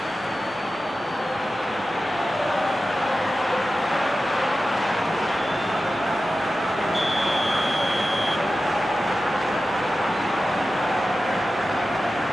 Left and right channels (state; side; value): normal; both; correlation 0.93